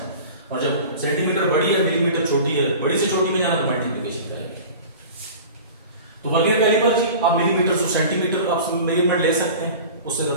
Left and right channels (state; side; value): inverted; both; correlation -0.38